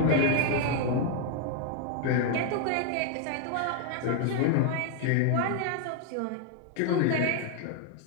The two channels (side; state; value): both; different; correlation 0.01